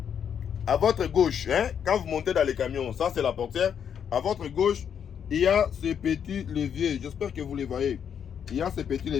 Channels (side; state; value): right; quieter; 8.1 dB